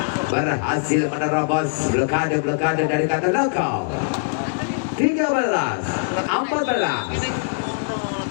Berhasil menerobos blokade dari Katolakau.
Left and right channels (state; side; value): silent; right; digital silence